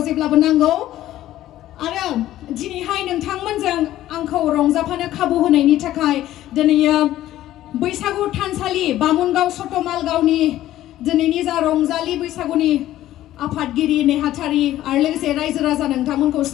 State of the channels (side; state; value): right; quieter; 13.8 dB